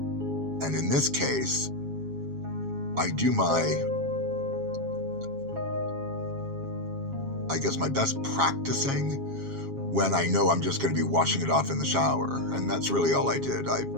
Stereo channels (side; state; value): left; late; 7.3 ms